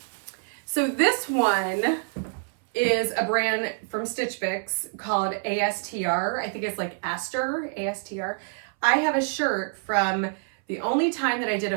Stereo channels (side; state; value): left; silent; 61 dB below the other